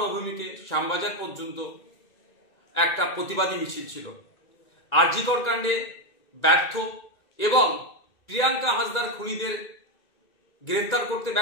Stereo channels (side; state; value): right; late; 2.2 ms